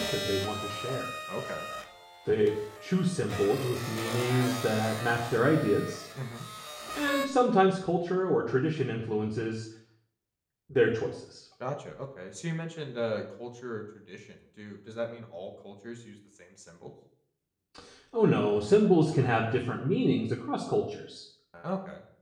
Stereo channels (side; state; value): both; identical; correlation 1.00